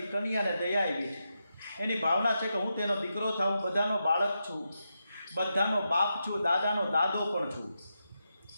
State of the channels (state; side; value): inverted; both; correlation -0.86